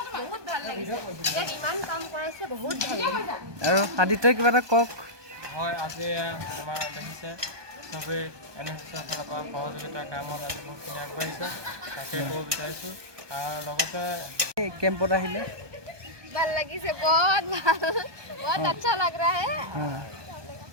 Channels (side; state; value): left; late; 1.2 ms